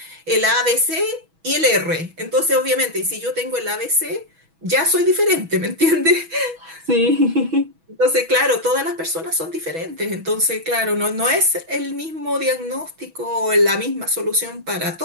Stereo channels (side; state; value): left; late; 6.2 ms